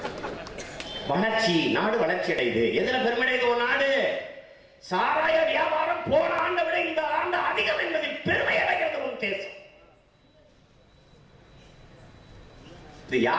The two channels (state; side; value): identical; both; correlation 1.00